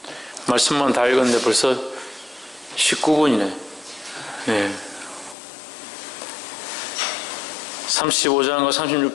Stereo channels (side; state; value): right; drops out; at 5.4 s